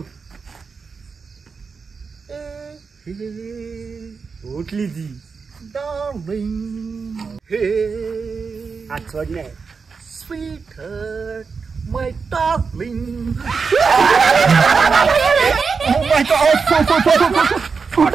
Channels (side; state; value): left; quieter; 5.2 dB